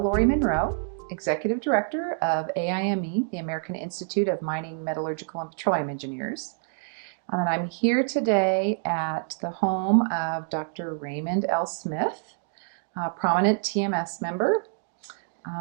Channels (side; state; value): left; silent; digital silence